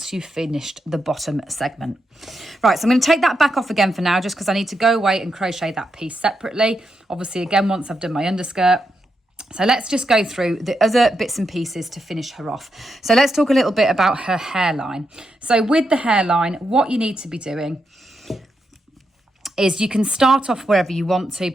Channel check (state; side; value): normal; both; correlation 0.84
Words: you've finished the bottom segment. Right, so I'm going to take that back off again for now, just because I need to go away and crochet that piece separately. Obviously, again, once I've done my underskirt. So let's just go through the other bits and pieces to finish her off. So let's talk a little bit about her hairline. So with the hairline, what you need to be doing is you can start off wherever you want to,